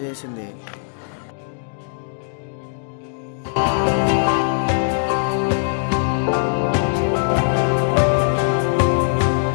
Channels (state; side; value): silent; right; digital silence